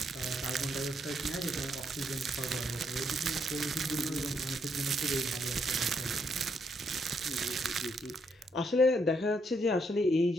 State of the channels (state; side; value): normal; both; correlation 0.75